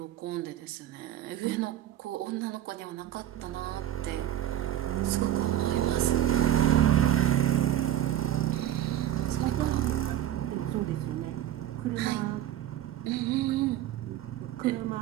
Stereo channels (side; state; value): left; quieter; 12.0 dB